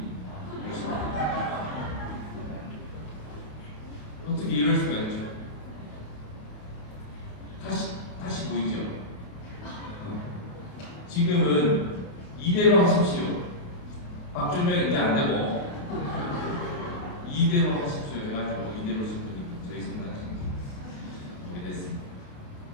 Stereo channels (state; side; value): late; right; 28 ms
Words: 어떻게 이럴 수가 있죠? 다시 보이죠? 지금은 이대로 하십시오. 박준영 이제 안 되고 이대로 하십시오. 해가지고 이대로 신부님 저희 성당 신부 오게 됐습니다.